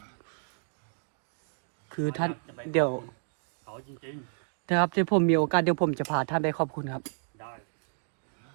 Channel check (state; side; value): silent; left; digital silence